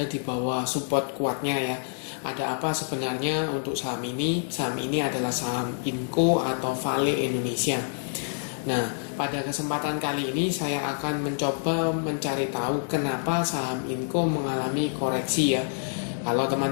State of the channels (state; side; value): silent; right; 60 dB below the other